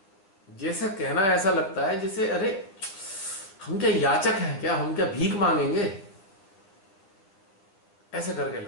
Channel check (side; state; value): right; late; 10 ms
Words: जैसे कहना ऐसा लगता है जैसे अरे हम क्या याचक हैं क्या, हम क्या भीख मांगेंगे, ऐसे करके